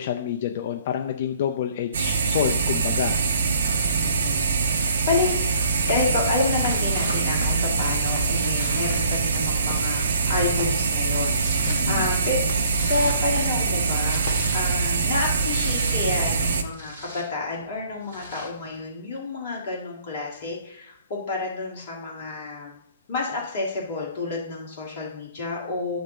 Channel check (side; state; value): both; inverted; correlation -0.58